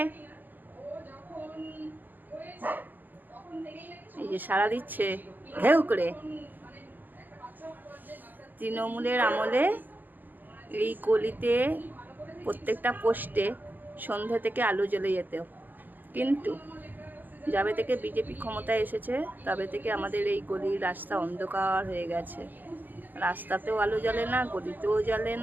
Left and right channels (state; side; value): late; left; 0.086 ms